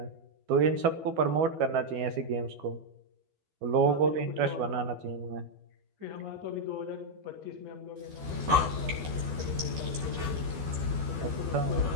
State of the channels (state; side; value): late; left; 12 ms